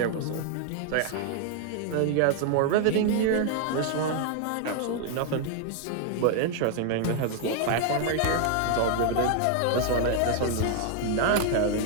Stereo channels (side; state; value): both; different; correlation 0.00